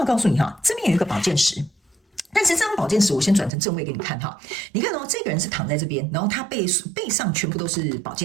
告訴你這邊有一個寶劍10，但是這張寶劍十，我先轉成正位給你看哈。你看哦，這個人是躺在這邊，然後他背上全部都是寶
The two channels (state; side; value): drops out; left; at 3.5 s